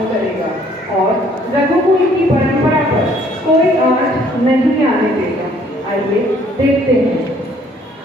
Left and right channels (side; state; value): both; normal; correlation 0.61